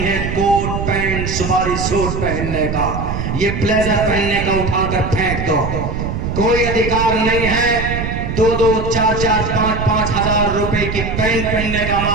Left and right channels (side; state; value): right; noise; rumble, 4 dB below the sound